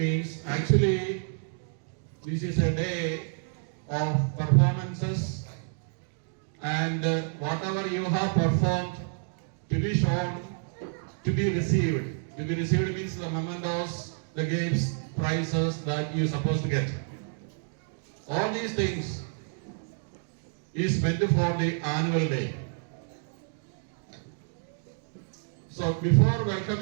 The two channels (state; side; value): silent; left; 58 dB below the other